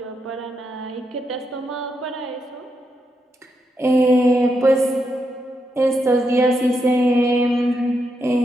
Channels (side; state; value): both; normal; correlation 0.82